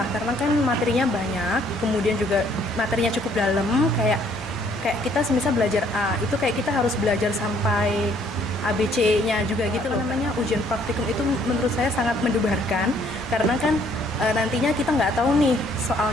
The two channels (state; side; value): normal; both; correlation 0.63